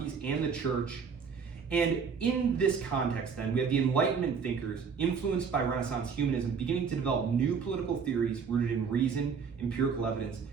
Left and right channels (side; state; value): left; quieter; 6.1 dB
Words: and the church. And in this context, then, we have the Enlightenment thinkers influenced by Renaissance humanism beginning to develop new political theories rooted in reason, empirical evidence,